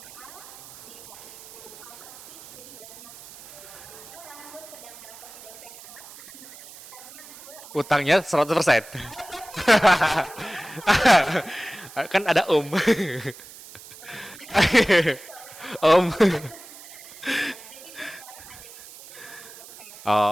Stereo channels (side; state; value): right; noise; hiss, 18 dB below the sound